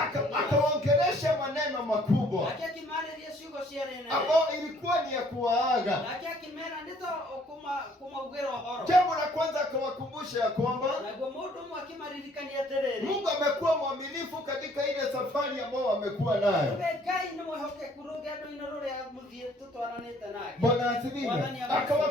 Akaongelesha maneno makubwa ambao ilikuwa ni ya kuwaaga. Jambo la kwanza akawakumbusha ya kwamba Mungu amekuwa mwaminifu katika ile safari ambayo amekuwa nayo. Bwana asifiwe.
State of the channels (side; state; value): both; normal; correlation 0.60